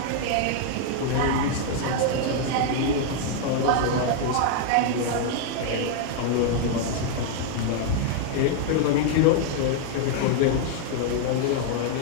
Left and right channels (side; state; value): both; different; correlation 0.00